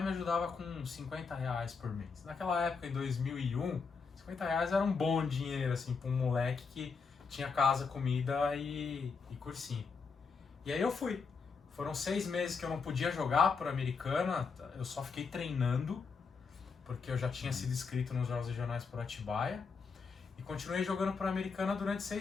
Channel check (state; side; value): quieter; right; 5.1 dB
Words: me ajudava com R$50 por mês. Naquela época, em 2001, R$50 era um bom dinheiro, assim, pra um moleque que tinha casa, comida e cursinho. E aí eu fui. Foram 6 meses que eu não podia jogar por Americana, eu só fiquei treinando, porque eu já tinha sido inscrito nos Jogos Regionais por Atibaia. E continuei jogando por Americana durante